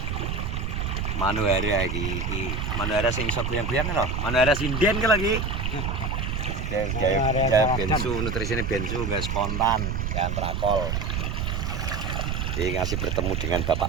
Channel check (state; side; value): noise; right; rumble, 2 dB below the sound